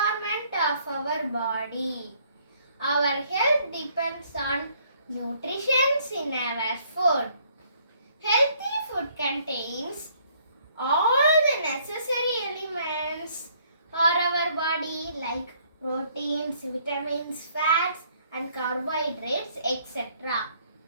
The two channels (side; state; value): both; inverted; correlation -0.64